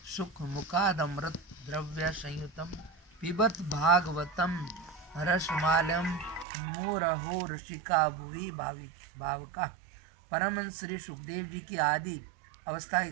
सुख मुखादमृत द्रव्य संयुतम पिबत भागवतम रसमालयम मुरहो ऋषिका भुवि भावका। परमहंस श्री सुखदेव जी की आदि अवस्था की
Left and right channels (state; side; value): drops out; left; at 6.5 s